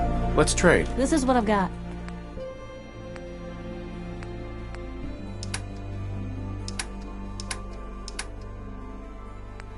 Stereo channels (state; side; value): identical; both; correlation 1.00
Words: Let's trade. This is what I've got.